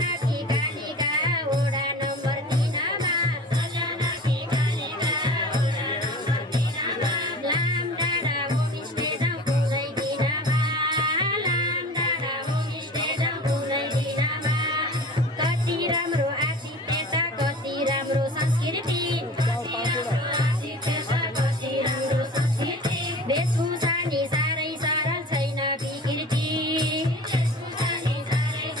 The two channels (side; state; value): both; normal; correlation 0.39